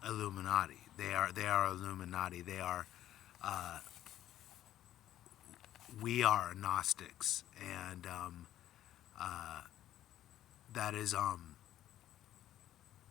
Illuminati. They are Illuminati. Uh, we are Gnostics, and uh, that is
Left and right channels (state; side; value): quieter; right; 12.5 dB